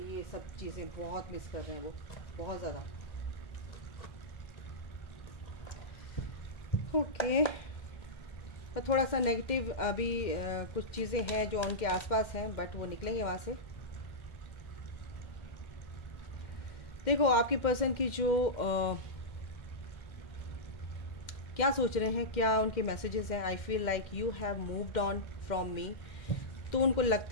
ये सब चीज़ें बहुत मिस कर रहे हैं वो, बहुत ज़्यादा। ओके, और थोड़ा सा नेगेटिव अभी कुछ चीज़ें हैं जो उनके आसपास हैं, बट वो निकलेंगे वहाँ से। देखो आपके पर्सन की जो क्या सोच रहे हैं, क्या उनके मैसेजेस हैं। I feel like you have moved on from me. तो उनको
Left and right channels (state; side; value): late; right; 2.1 ms